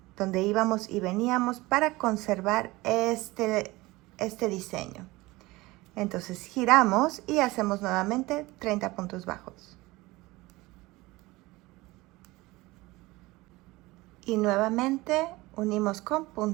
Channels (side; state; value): left; quieter; 20.8 dB